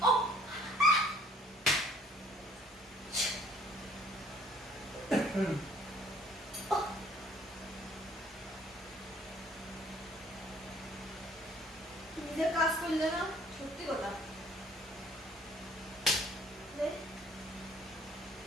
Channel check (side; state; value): both; normal; correlation 0.58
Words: নিজের কাজ করলে না সত্যি কথা